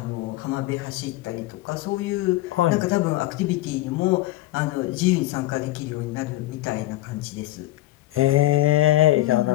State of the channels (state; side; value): quieter; right; 16.8 dB